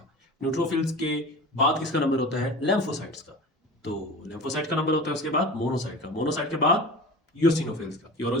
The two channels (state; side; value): normal; both; correlation 0.35